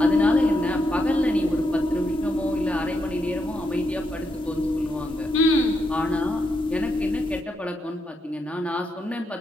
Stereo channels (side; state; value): both; normal; correlation 0.82